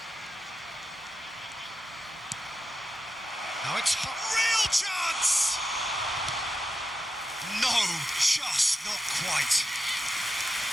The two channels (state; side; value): normal; both; correlation 0.90